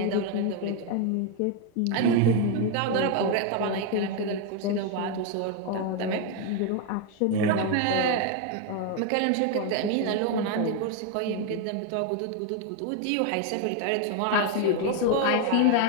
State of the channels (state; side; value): different; both; correlation 0.01